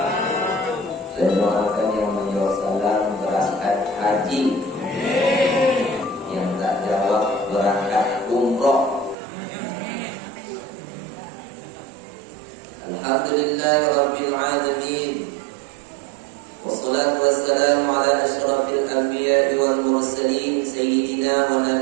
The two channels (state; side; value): drops out; left; at 9.2 s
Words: Saya doakan yang menjawab salam berangkat haji, yang tak jawab berangkat umroh. Alhamdulillahirabbil alamin. Wassalatu wassalamu ala asyrafil anbiya'i wal mursalin sayyidina wa